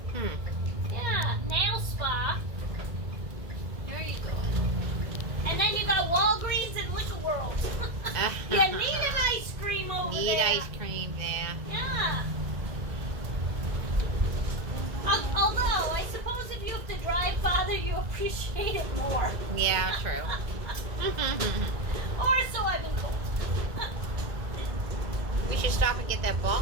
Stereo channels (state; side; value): late; left; 1.9 ms